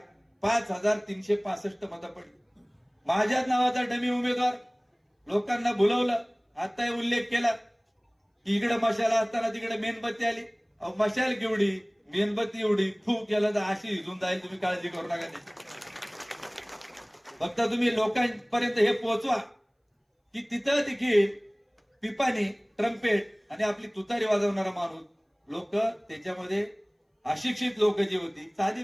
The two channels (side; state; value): both; identical; correlation 1.00